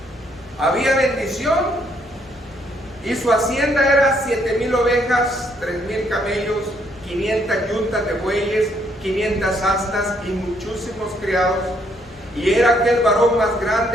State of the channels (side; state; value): left; noise; hum, 26 dB below the sound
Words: Había bendición. Y su hacienda era 7,000 ovejas, 3,000 camellos, 500 yuntas de bueyes, 500 asnas y muchísimos criados. Y era aquel varón más